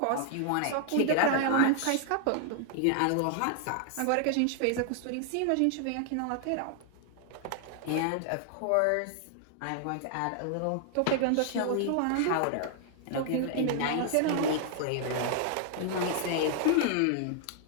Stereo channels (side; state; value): both; different; correlation 0.00